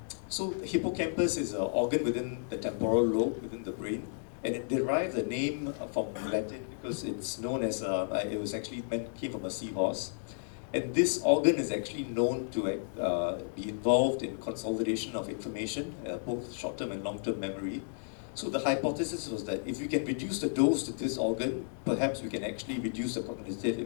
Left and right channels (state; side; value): silent; right; digital silence